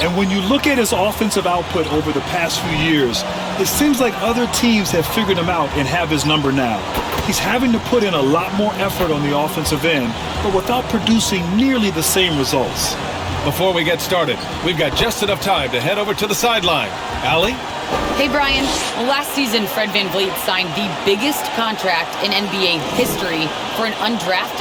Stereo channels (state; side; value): identical; both; correlation 1.00